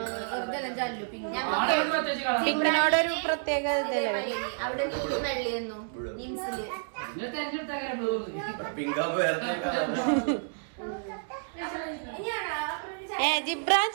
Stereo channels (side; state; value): left; silent; digital silence